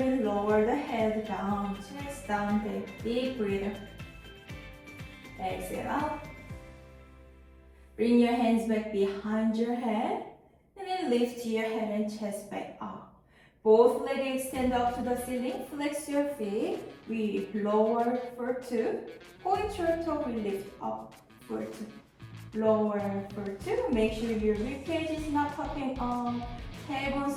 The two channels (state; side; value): identical; both; correlation 1.00